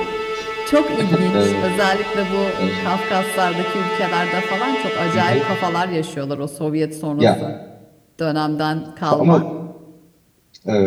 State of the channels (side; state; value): both; identical; correlation 1.00